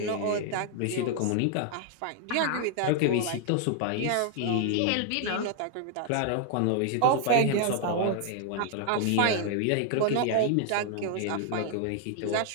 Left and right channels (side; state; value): both; different; correlation 0.00